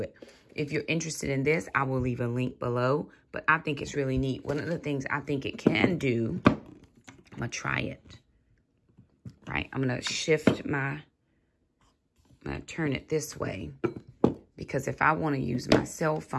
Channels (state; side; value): identical; both; correlation 1.00